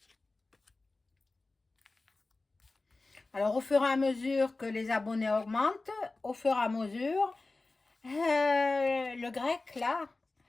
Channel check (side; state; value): right; quieter; 3.4 dB